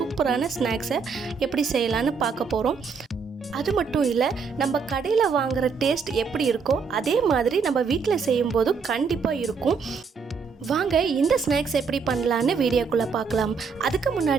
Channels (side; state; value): left; quieter; 5.4 dB